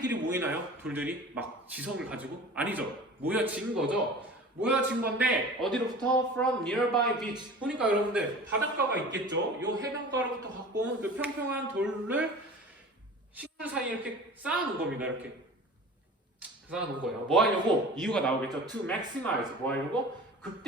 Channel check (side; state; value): both; normal; correlation 0.40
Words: 모이나요? 돌들이 막 지성을 가지고? 아니죠. 모여진 거죠. 모여진 건데 어디로부터? From nearby beach. 보니까 여러분들 바닷가가 있겠죠. 요 해변가로부터 갖고 온 그 평평한 돌을 식물 사이에 이렇게 쌓아놓은 겁니다. 이렇게 쌓아놓은 거예요. 뭐 하려고? 이유가 나오겠죠. To maximize. 뭐 하려고?